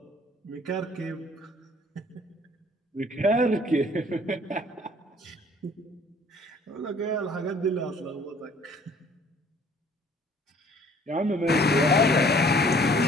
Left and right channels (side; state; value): both; normal; correlation 0.56